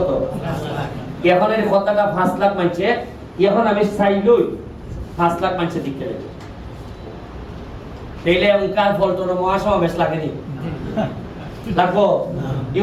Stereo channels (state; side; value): identical; both; correlation 1.00